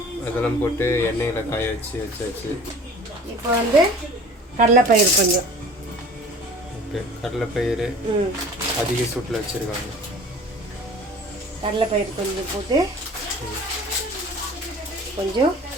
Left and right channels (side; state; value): both; normal; correlation 0.45